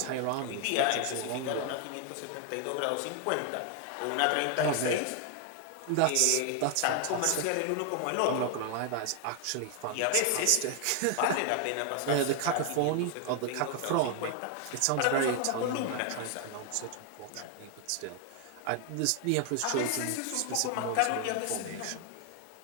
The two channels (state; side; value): different; both; correlation 0.00